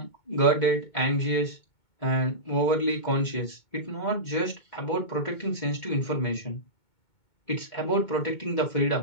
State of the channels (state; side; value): late; right; 2.2 ms